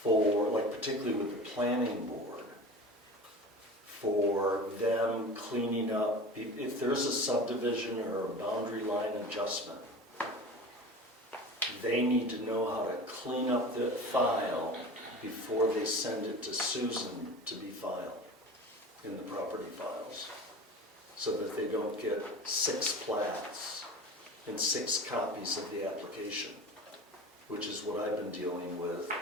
like particularly with the planning board, for them cleaning up, if there's a subdivision or a boundary line adjustment, they need to know how to clean up the file before they send it to Susan to be filed in the property files, so that they don't get 6 plats and 6 copies of the application, which is what I've been dealing with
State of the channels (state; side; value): normal; both; correlation 0.35